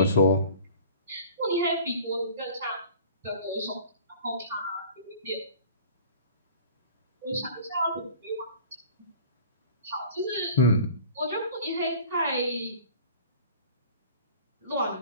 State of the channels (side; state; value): both; inverted; correlation -0.45